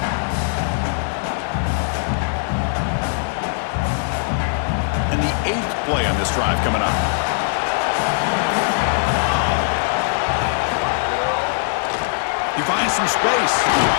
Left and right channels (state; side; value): silent; right; 63 dB below the other